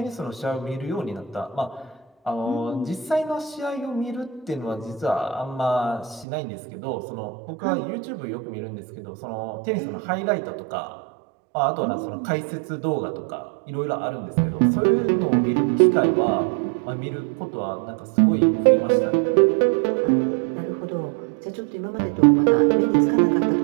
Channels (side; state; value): left; drops out; at 6.2 s